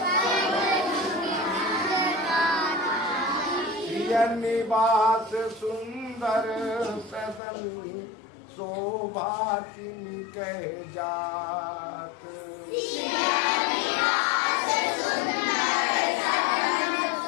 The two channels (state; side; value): drops out; right; at 7.4 s